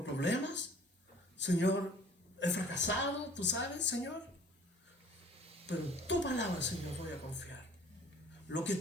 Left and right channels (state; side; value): normal; both; correlation 0.51